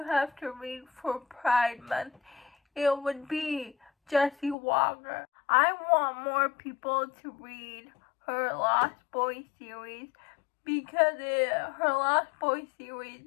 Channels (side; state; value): right; drops out; at 4.5 s